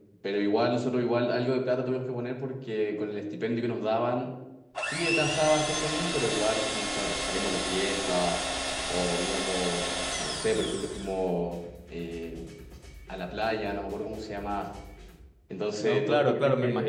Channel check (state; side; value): identical; both; correlation 1.00